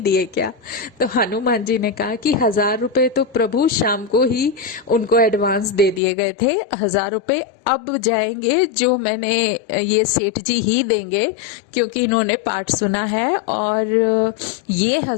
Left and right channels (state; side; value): drops out; right; at 6.0 s